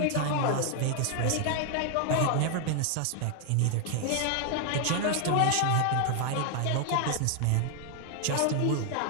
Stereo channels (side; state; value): both; different; correlation 0.00